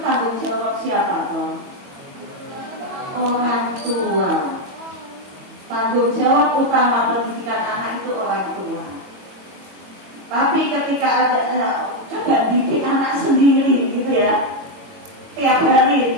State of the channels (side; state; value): left; late; 22 ms